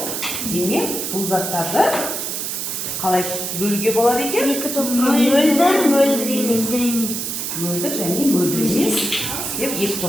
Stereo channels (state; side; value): noise; right; hiss, 3 dB below the sound